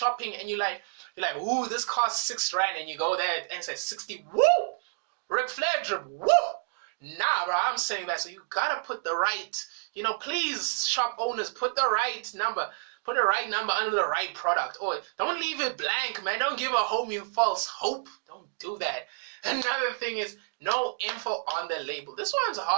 and you're like, ooh, this costs 6 rand, and you go there and it says 60. Woo! Ric Flair drip. Woo! Nah, bro, I'm saying that. So you gotta put the right, please, shop owners, put the right number. Put the right number under the right product. Or don't leave it blank, man. Don't give a homie false hope. Don't do that. Another thing is no info on the label. This one's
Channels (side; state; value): left; silent; digital silence